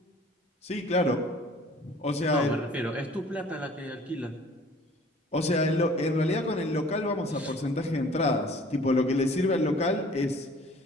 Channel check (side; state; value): both; normal; correlation 0.51